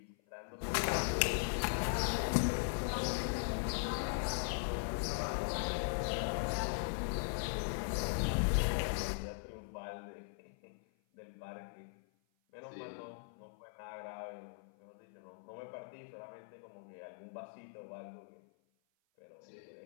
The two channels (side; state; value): right; silent; 51 dB below the other